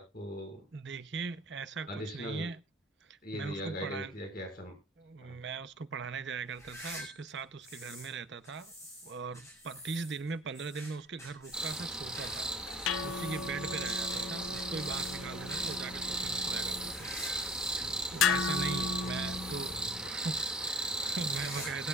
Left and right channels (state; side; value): normal; both; correlation 0.44